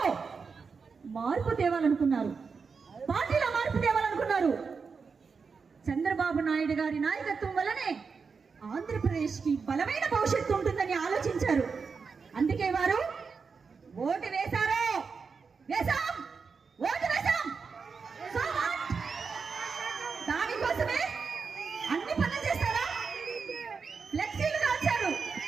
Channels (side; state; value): left; quieter; 5.3 dB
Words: మార్పు తేవాలనుకున్నారు, పార్టీలో మార్పు తేవాలనుకున్నారు. చంద్రబాబు నాయుడు గారి నాయకత్వం వల్లనే ఆంధ్రప్రదేశ్ కి బలమైన భవిష్యత్తు ఉంటుందని ఆలోచించారు. అందుకే వారు ఓటు వేశారు. ఓటు వేశాం. దానికోసమే అన్ని పనులు చేస్తారా? ఫ్లెక్సీలు కాల్చారు.